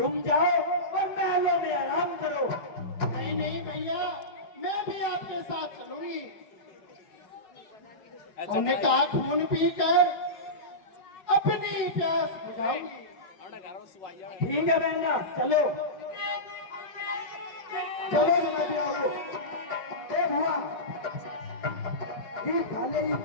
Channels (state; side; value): late; right; 4.8 ms